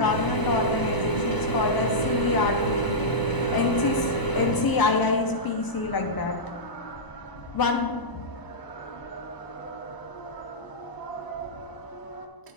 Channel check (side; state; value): right; late; 1.0 ms